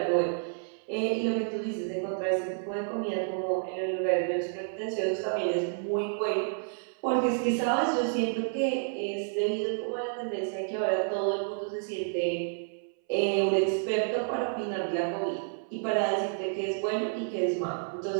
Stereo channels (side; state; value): left; silent; 58 dB below the other